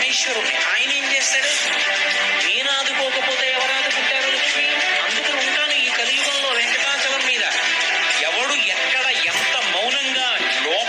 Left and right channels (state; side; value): identical; both; correlation 1.00